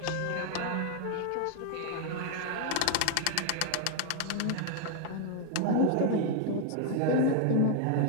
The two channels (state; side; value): different; both; correlation 0.00